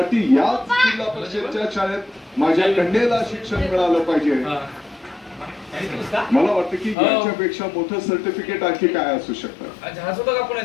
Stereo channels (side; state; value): right; drops out; at 7.0 s